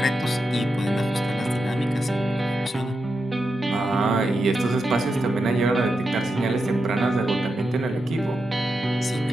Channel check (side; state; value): both; normal; correlation 0.87